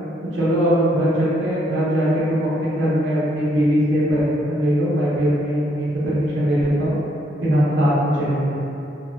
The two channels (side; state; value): both; normal; correlation 0.72